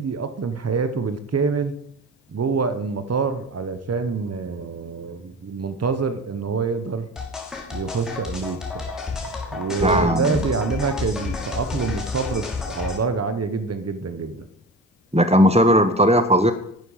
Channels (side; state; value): both; normal; correlation 0.34